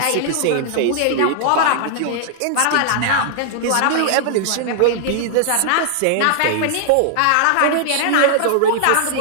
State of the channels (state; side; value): different; both; correlation -0.01